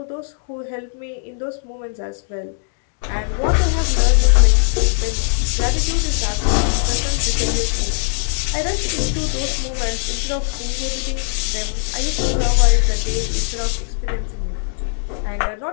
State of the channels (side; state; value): right; silent; digital silence